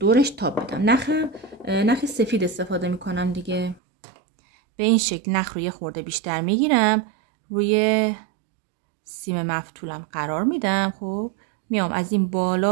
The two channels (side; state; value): left; drops out; at 3.8 s